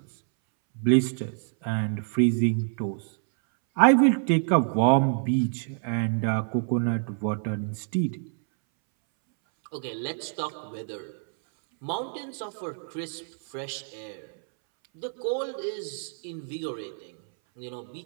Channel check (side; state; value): left; silent; 60 dB below the other